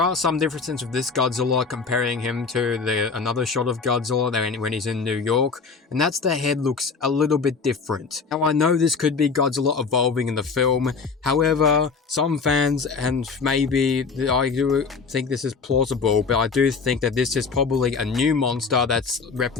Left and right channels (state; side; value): quieter; right; 4.9 dB